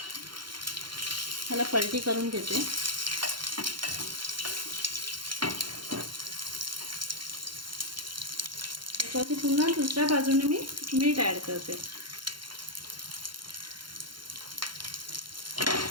ह्याला पलटी करून घेते। त्याच्यावरती पुन्हा दुसऱ्या बाजूने मी मीठ ॲड करते।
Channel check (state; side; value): late; left; 0.72 ms